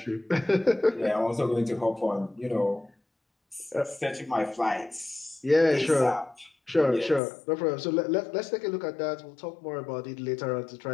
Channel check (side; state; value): right; drops out; at 7.2 s